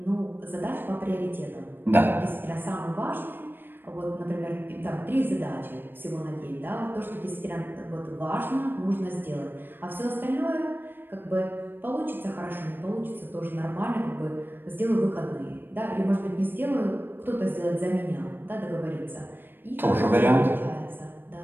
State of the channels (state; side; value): late; left; 0.096 ms